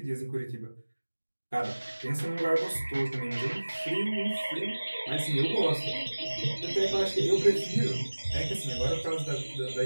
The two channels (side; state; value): both; inverted; correlation -1.00